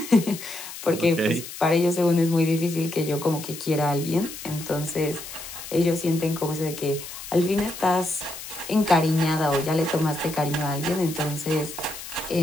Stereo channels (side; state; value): left; noise; hiss, 11 dB below the sound